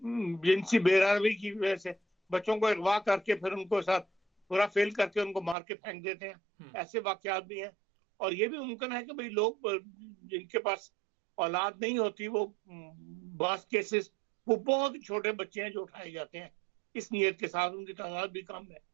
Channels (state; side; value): drops out; left; at 5.6 s